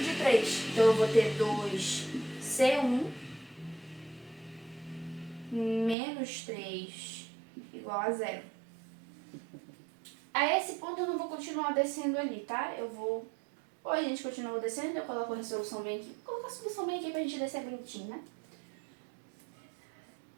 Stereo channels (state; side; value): drops out; left; at 6.0 s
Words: de 3. Então eu vou ter 2C1 menos 3 igual a 0. A esse ponto eu não vou continuar descendo ali, tá? Ou a gente continua descendo, eu coloco a resolução bem aqui. Vou colocar a solução bem aqui pra gente descer bonitinho, né?